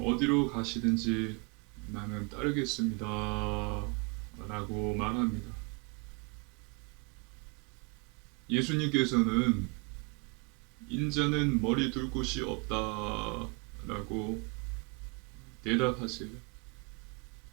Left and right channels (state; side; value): quieter; left; 30.7 dB